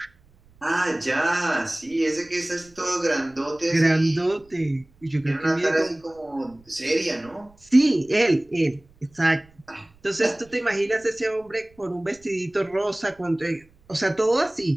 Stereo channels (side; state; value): right; noise; rumble, 29 dB below the sound